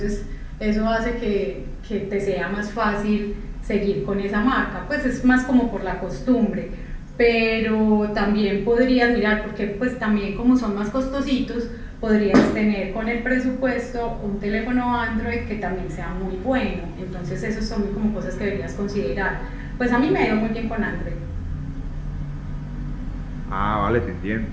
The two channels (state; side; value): identical; both; correlation 1.00